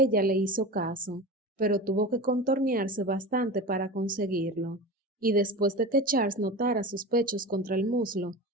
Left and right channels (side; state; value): both; normal; correlation 0.29